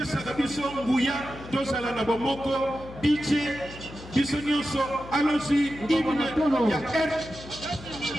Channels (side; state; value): left; noise; hum, 15 dB below the sound